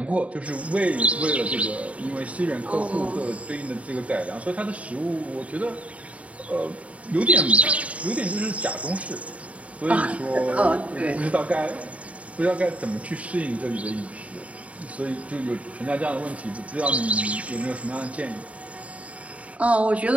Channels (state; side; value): late; left; 0.066 ms